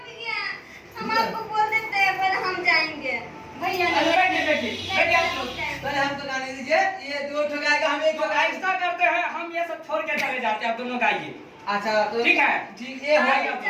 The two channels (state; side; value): identical; both; correlation 1.00